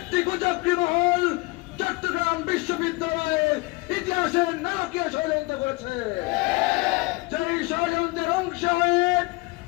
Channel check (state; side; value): quieter; right; 24.5 dB